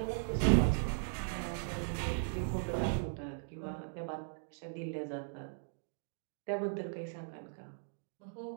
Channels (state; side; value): silent; left; digital silence